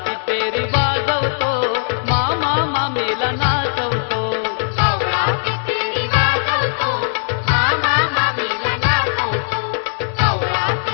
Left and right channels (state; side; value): silent; right; digital silence